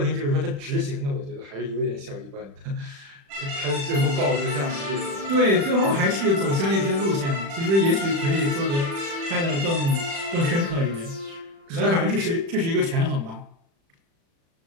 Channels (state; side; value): late; left; 36 ms